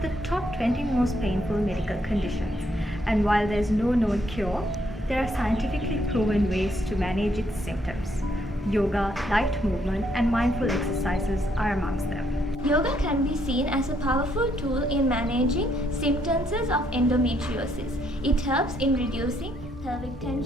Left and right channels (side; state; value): both; normal; correlation 0.72